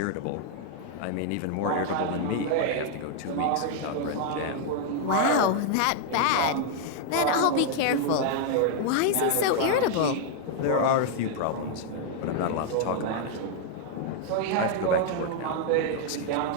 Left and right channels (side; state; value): both; different; correlation 0.00